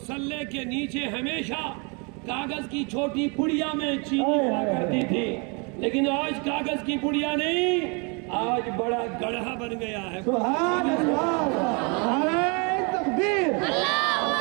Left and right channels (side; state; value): left; quieter; 32.9 dB